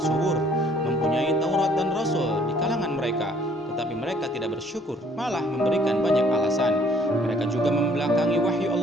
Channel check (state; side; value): normal; both; correlation 0.60